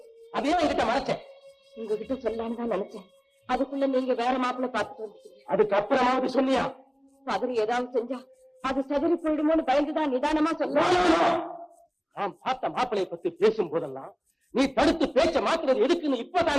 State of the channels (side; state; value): both; identical; correlation 1.00